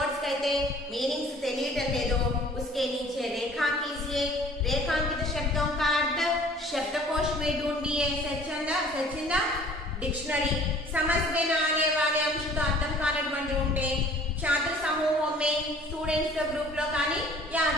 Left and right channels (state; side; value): normal; both; correlation 0.51